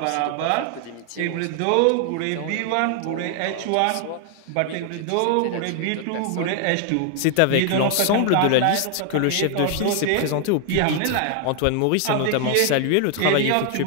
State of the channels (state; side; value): different; both; correlation 0.00